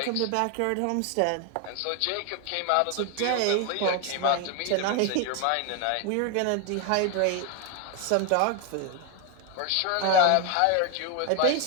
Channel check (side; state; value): both; different; correlation 0.01